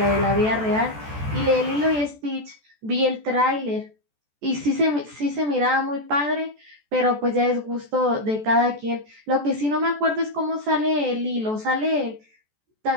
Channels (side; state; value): left; late; 14 ms